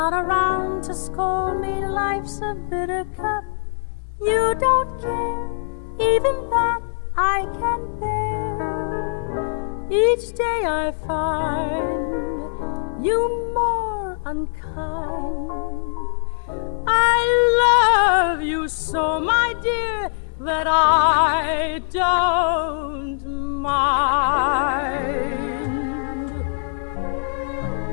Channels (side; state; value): right; silent; digital silence